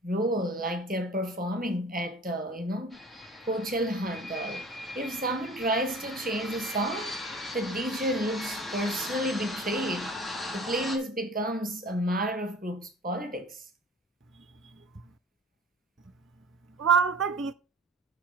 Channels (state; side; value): normal; both; correlation 0.44